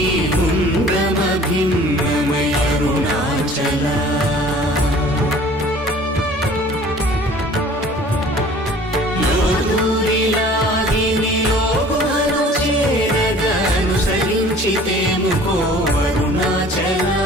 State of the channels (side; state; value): both; normal; correlation 0.49